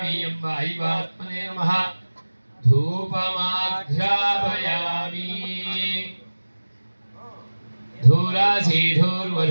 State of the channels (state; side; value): inverted; both; correlation -1.00